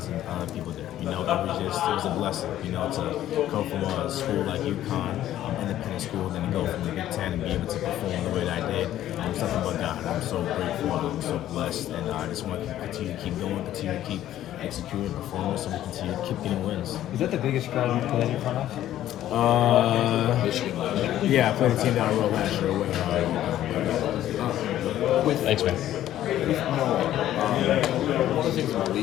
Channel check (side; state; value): right; quieter; 12.7 dB